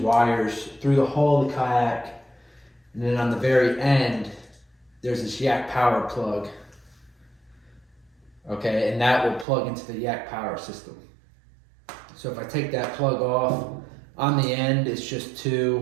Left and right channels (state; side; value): drops out; left; at 9.5 s